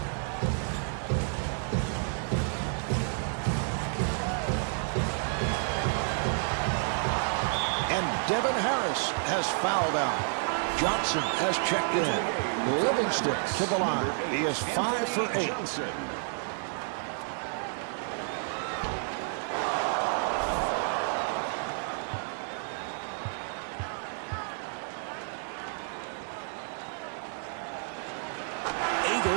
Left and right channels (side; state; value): left; silent; 58 dB below the other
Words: And Devin Harris has fouled out. Johnson has checked in. Livingston to the line. He is 5 for 8. Johnson.